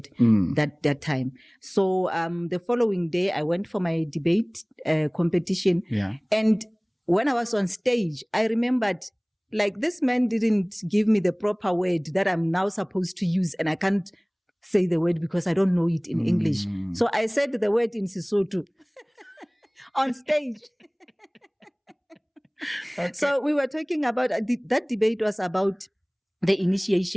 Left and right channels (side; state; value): both; identical; correlation 1.00